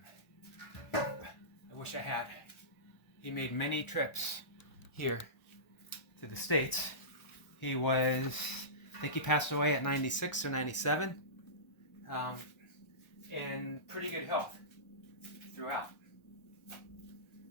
I wish I had. He made many trips here to the States. He was, I think he passed away at 96 or 97, in pretty good health throughout.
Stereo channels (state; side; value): late; right; 1.4 ms